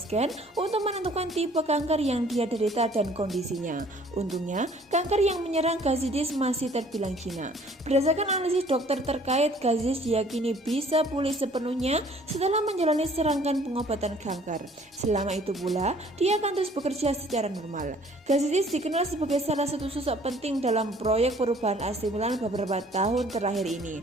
untuk menentukan tipe kanker yang dia derita dan kondisinya. Untungnya, kanker yang menyerang Gazidis masih terbilang jinak. Berdasarkan analisis dokter terkait, Gazidis diyakini bisa pulih sepenuhnya setelah menjalani serangkaian pengobatan kanker. Selama itu pula, dia akan terus bekerja secara normal. Gazidis dikenal sebagai salah satu sosok penting dalam proyek perubahan AC Milan beberapa tahun terakhir ini.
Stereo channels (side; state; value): both; normal; correlation 0.56